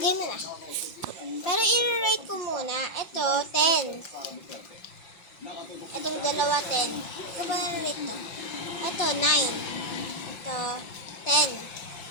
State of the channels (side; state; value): right; late; 5.9 ms